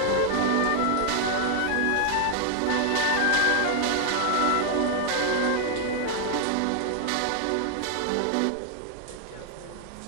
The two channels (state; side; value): different; both; correlation 0.00